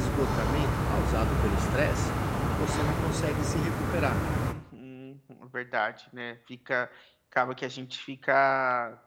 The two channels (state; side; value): identical; both; correlation 1.00